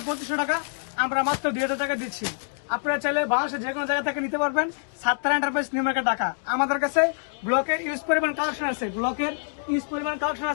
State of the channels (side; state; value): right; silent; digital silence